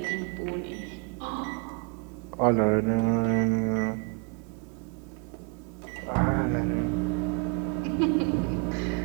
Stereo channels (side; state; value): left; quieter; 36.8 dB